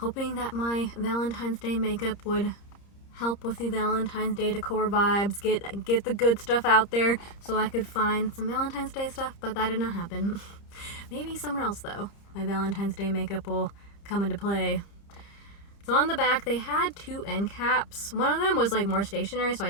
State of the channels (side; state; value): right; late; 30 ms